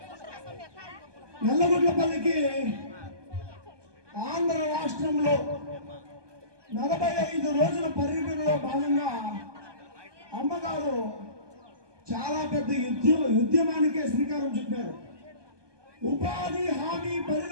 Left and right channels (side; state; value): left; late; 1.2 ms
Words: నల్లగొండపల్లికి ఆంధ్ర రాష్ట్రంలో 45 రోజుల పర్యటనలో భాగంగా అమ్మగారు చాలా పెద్ద ఉద్యమానికే శ్రీకారం చుట్టారు. ఉపాధి హామీ